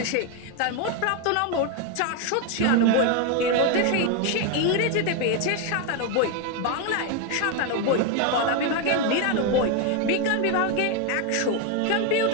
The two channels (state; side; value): different; both; correlation 0.01